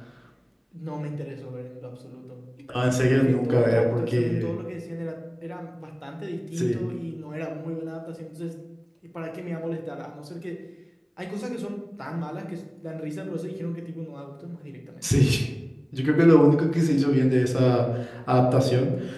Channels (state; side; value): identical; both; correlation 1.00